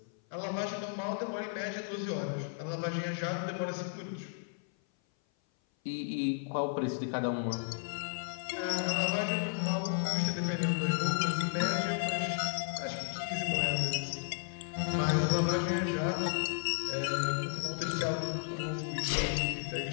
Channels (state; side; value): silent; right; 55 dB below the other